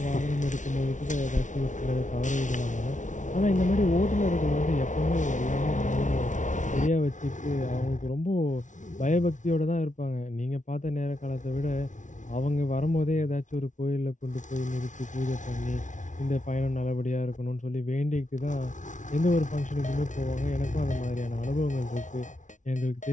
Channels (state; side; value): late; right; 0.37 ms